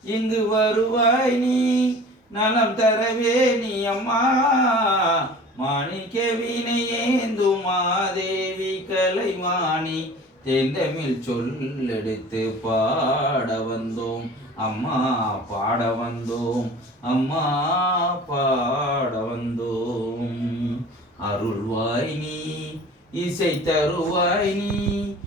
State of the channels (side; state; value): both; normal; correlation 0.43